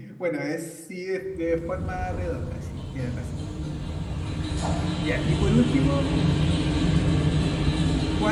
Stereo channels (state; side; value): identical; both; correlation 1.00